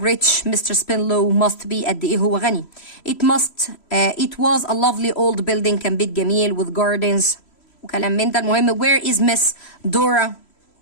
Mr. Spinlow must be قد ايه هو غني. It was a lovely old building كان بيت جميل with gardens وكلام من ده. المهم where is Miss Dora.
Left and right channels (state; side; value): late; right; 3.1 ms